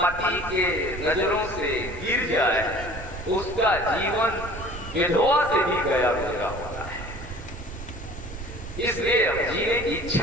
के नजरों से गिर जाए उसका जीवन विधवा से भी गया गुजरा होता है, इसलिए अब जीने की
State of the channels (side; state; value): right; noise; rumble, 11 dB below the sound